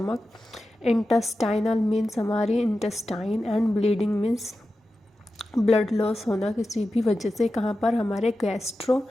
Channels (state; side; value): normal; both; correlation 0.92